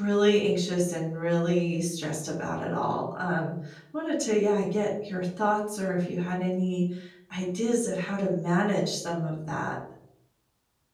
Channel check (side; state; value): both; identical; correlation 1.00